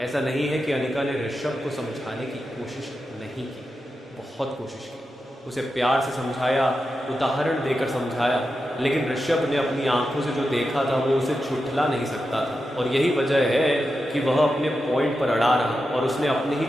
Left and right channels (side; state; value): both; normal; correlation 0.89